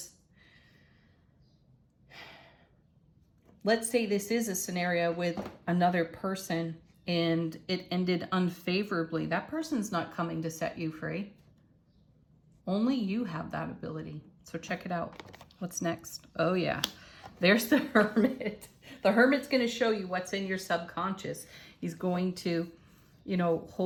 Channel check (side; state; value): both; identical; correlation 1.00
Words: let's say this is a scenario with another person and it ended unfavorably. That person's not coming to set you free. Only you have that ability. So check it out. What's next? Oh yeah, there's the Hermit. The Hermit's going to show you what's in your subconscious. He's going to, you know,